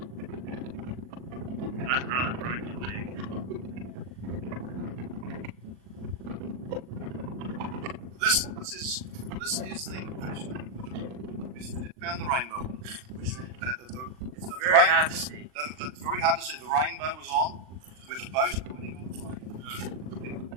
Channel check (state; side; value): late; left; 39 ms